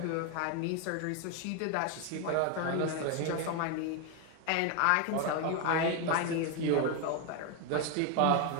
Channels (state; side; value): different; both; correlation 0.01